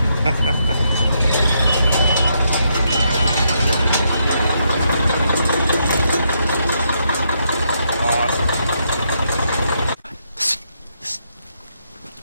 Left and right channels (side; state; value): both; inverted; correlation -0.77